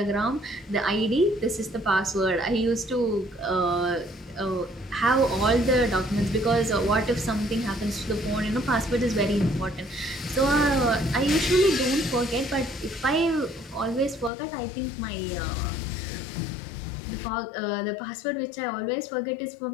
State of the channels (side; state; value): right; drops out; at 14.3 s